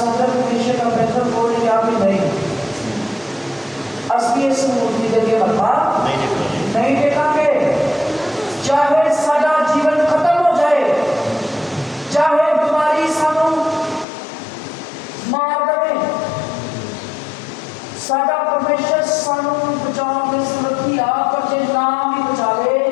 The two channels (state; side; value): drops out; right; at 14.1 s